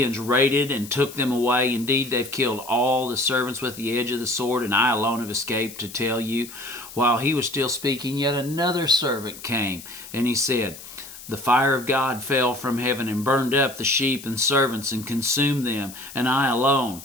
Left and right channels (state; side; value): noise; left; hiss, 15 dB below the sound